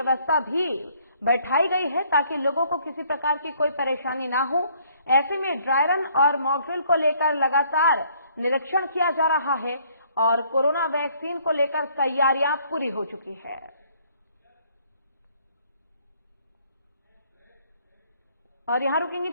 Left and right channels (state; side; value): inverted; both; correlation -0.63